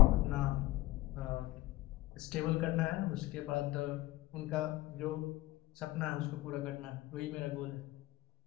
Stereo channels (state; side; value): quieter; right; 17.4 dB